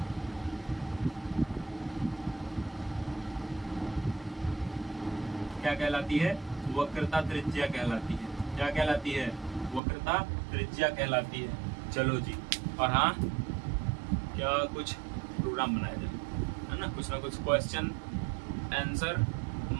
क्या कहलाती है? वक्रता त्रिज्या कहलाती है। क्या कहलाती है? वक्रता त्रिज्या कहलाती है। चलो जी, और हाँ, क्या कुछ प्रोग्राम बनाया जाए, है ना? कुछ ना कुछ क्वेश्चन आंसर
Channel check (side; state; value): left; drops out; at 9.8 s